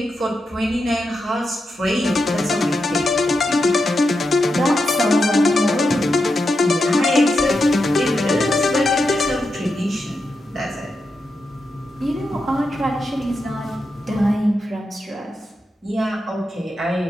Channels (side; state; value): both; normal; correlation 0.87